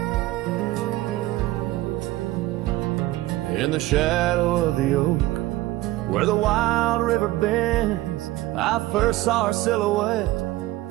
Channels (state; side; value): quieter; left; 17.1 dB